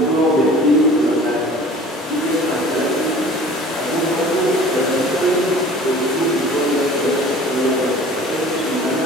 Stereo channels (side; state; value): both; normal; correlation 0.45